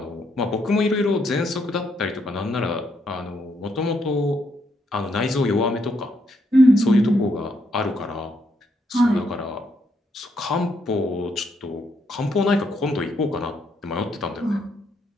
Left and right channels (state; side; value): normal; both; correlation 0.76